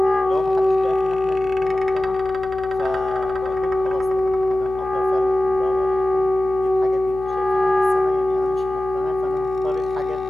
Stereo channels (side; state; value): left; noise; hum, 17 dB below the sound